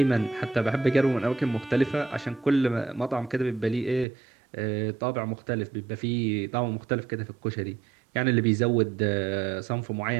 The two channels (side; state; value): left; drops out; at 4.0 s